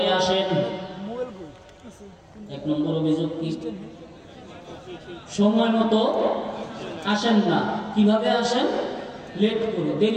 আসেন। 1 নম্বর অভিযোগ কি? সময় মতো আসেন না। কিভাবে আসেন? লেট করে,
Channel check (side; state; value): both; identical; correlation 1.00